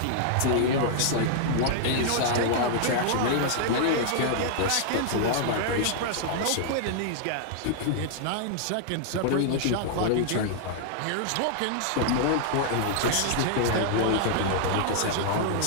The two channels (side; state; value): both; different; correlation -0.01